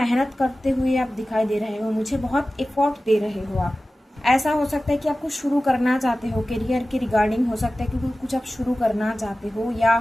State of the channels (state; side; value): normal; both; correlation 0.96